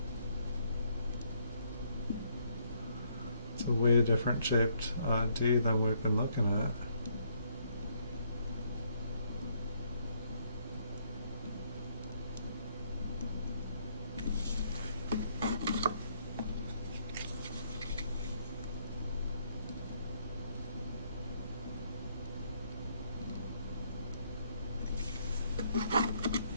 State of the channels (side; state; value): both; inverted; correlation -0.70